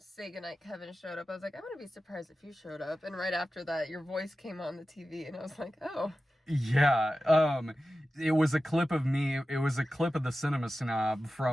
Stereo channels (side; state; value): both; normal; correlation 0.94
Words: Goodnight Kevin showed up, I was like, I wouldn't be surprised if you showed up. And right after that, your voice came on the TV, and I was like, oh. Yeah, it was a clip of me. It was a clip of the Cinema Snob